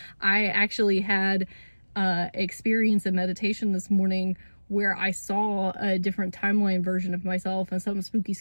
I actually had experience in meditation this morning where I saw a different timeline version of myself and something spooky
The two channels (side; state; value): both; inverted; correlation -1.00